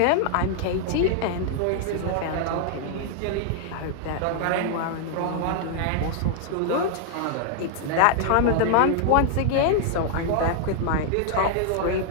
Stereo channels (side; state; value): both; different; correlation -0.01